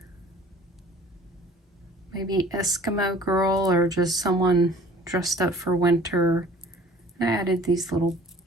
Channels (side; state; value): both; normal; correlation 0.50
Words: maybe Eskimo girl or just someone dressed up for winter. I added these little